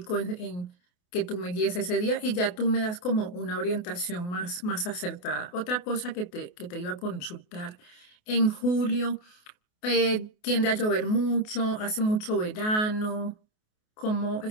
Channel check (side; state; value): right; late; 28 ms